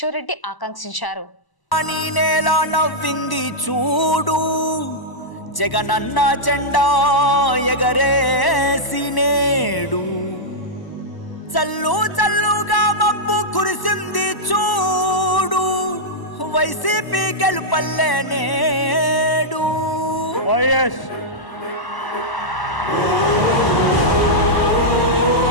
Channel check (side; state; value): right; late; 1.0 ms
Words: రెడ్డి ఆకాంక్షించారు. నవ్వింది చూడు, జగనన్న జెండా ఎగరేసి నేడు, చల్లు చల్లుగా మబ్బు కురిసింది చూడు, వైసీపీ గెలుపల్లే నేడు. వైఎస్